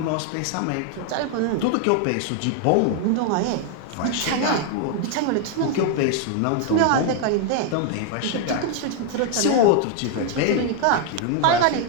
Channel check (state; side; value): different; both; correlation 0.00